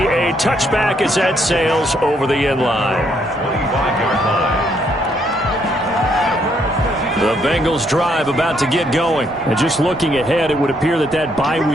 touchback as that sails over the end line. 25-yard line. The Bengals drive about to get going. And just looking ahead, it would appear that that bye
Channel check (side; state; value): both; normal; correlation 0.72